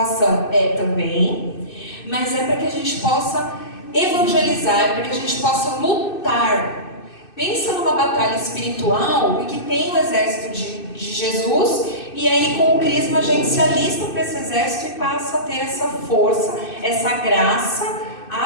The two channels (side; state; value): right; late; 2.6 ms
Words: É também, mas é para que a gente possa evangelizar, é para que a gente possa lutar. Pensa numa batalha espiritual e que tem o exército de Jesus, e aí com o crisma a gente se alista para esse exército e passa a ter essa força, essa graça